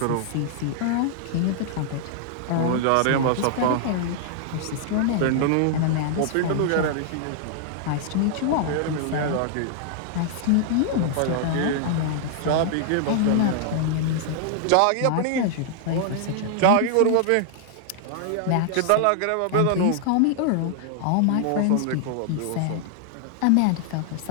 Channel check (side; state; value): both; different; correlation -0.01